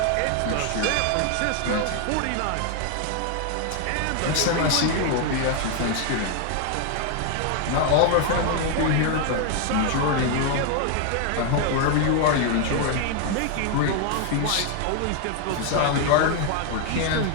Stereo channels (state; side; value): different; both; correlation 0.00